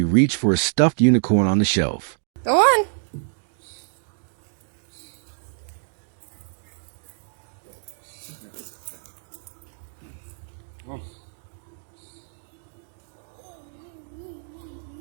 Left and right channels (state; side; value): silent; left; digital silence